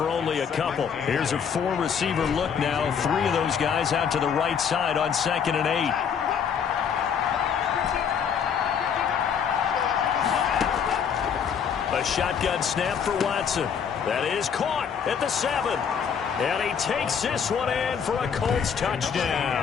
only a couple. Here's a 4-receiver look now. 3 of those guys out to the right side on 2nd and 8. A shotgun snap for Watson. That is caught at the 7. And he takes this one in for a Colts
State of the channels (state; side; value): quieter; right; 7.3 dB